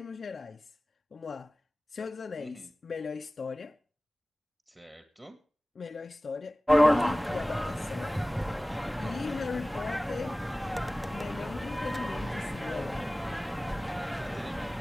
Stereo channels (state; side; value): normal; both; correlation 0.98